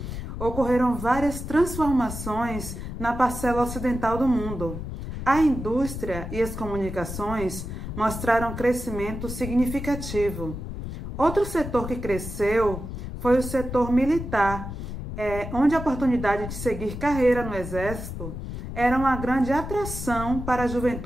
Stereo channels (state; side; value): noise; left; rumble, 7 dB below the sound